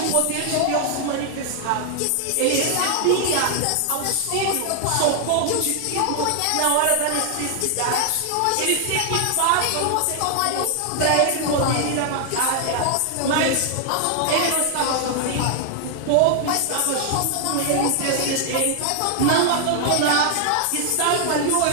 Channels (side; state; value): both; different; correlation 0.00